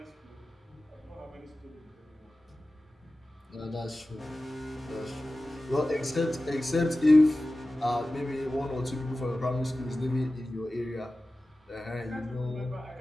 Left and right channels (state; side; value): normal; both; correlation 0.96